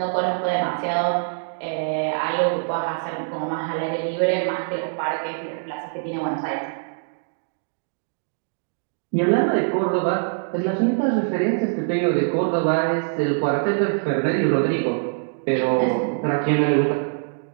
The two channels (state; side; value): silent; left; digital silence